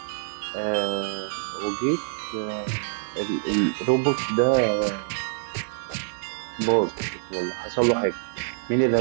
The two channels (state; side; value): silent; left; digital silence